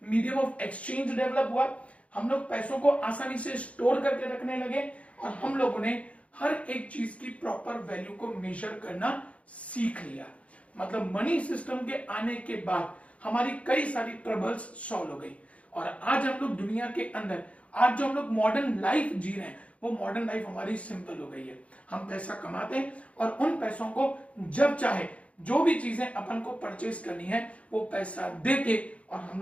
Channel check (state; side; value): late; right; 0.064 ms